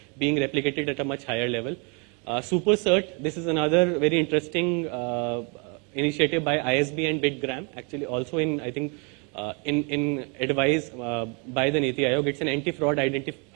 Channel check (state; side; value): quieter; left; 34.4 dB